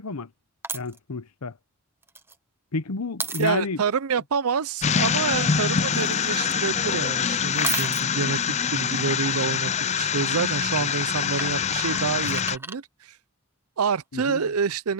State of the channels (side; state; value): both; normal; correlation -0.12